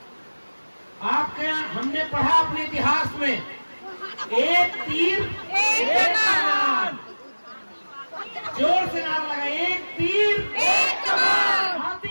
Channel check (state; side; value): inverted; both; correlation -1.00